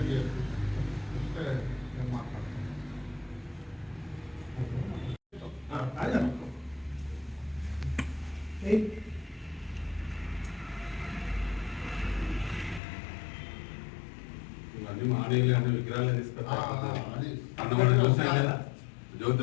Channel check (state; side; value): drops out; right; at 12.8 s